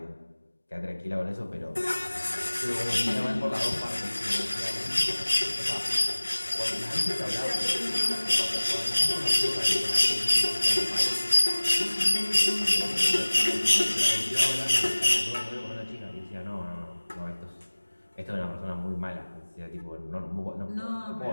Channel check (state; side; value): inverted; both; correlation -1.00